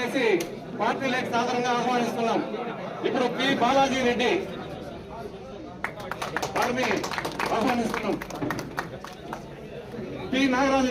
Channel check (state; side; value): identical; both; correlation 1.00